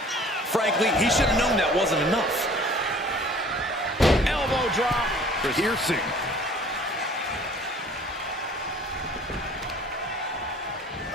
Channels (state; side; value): normal; both; correlation 0.50